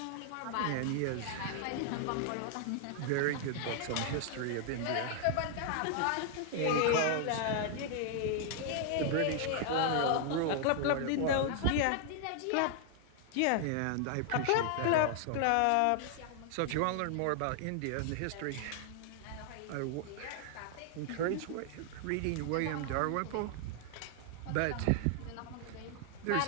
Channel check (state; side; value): different; both; correlation 0.00